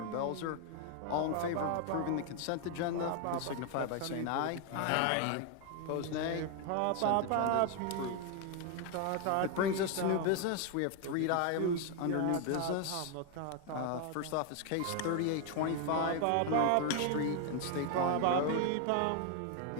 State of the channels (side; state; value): both; different; correlation 0.01